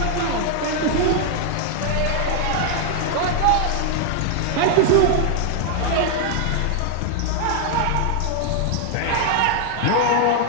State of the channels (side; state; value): both; different; correlation 0.00